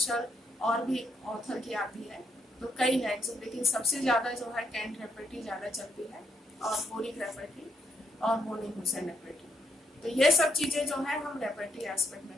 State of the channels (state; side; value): normal; both; correlation 0.77